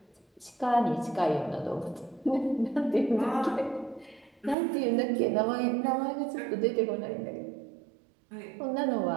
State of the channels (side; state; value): left; drops out; at 4.5 s